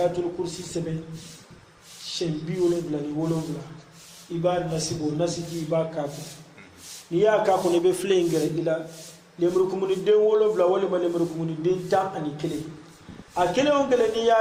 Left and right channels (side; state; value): both; identical; correlation 1.00